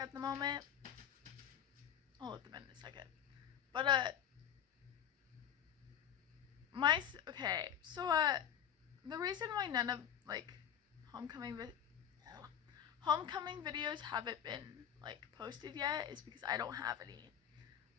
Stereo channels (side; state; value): right; quieter; 9.3 dB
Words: the moment. I'll let them in a second. But the reason why none of like homecoming videos haven't been like posted yet is because I don't have any.